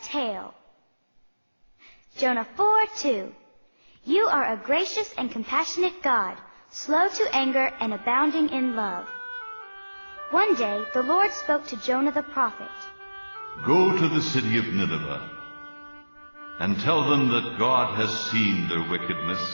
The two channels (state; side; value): inverted; both; correlation -1.00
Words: tale. Jonah 4:2. You are a gracious and compassionate God, slow to anger and abounding in love. One day the Lord spoke to Jonah the prophet. Go to the city of Nineveh and tell them that God has seen their wickedness,